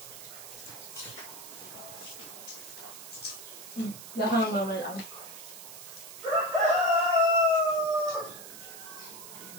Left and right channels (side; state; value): right; noise; hiss, 13 dB below the sound